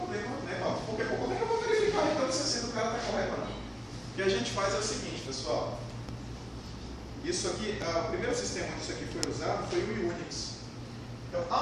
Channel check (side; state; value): both; identical; correlation 1.00